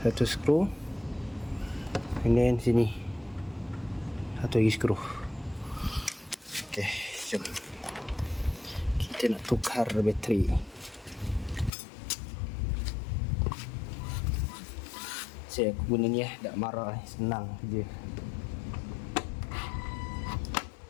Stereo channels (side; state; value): right; drops out; at 11.7 s